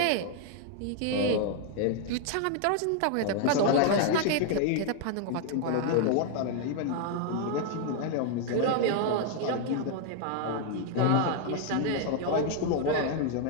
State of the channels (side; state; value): both; different; correlation 0.00